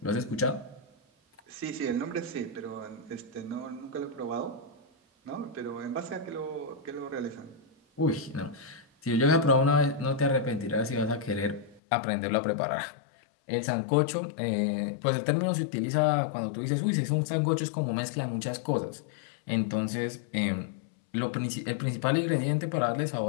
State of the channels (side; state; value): right; drops out; at 11.8 s